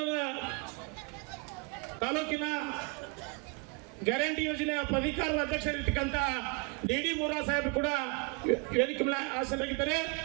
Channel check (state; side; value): quieter; left; 29.9 dB